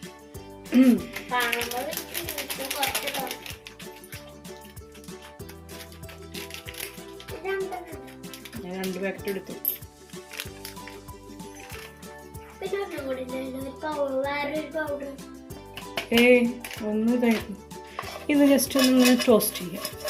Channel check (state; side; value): identical; both; correlation 1.00